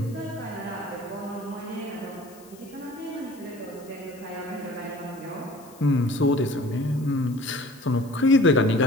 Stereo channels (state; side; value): noise; left; hiss, 24 dB below the sound